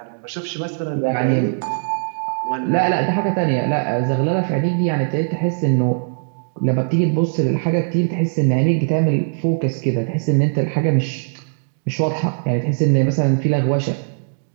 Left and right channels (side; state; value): left; silent; digital silence